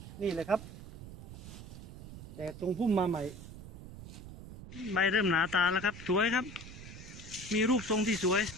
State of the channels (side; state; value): right; noise; rumble, 13 dB below the sound